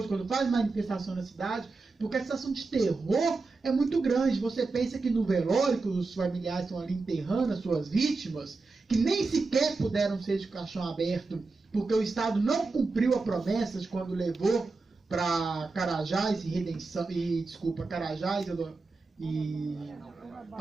quando faz manifestação na cidade, porque a sensação de terror é muito grande. Você pensa que no velório, que os familiares estão ali enterrando as suas vítimas, que nem sequer puderam ser de caixão aberto, porque o Estado não cumpriu a promessa de quando levou para Carajás Carajás e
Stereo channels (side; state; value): left; quieter; 3.8 dB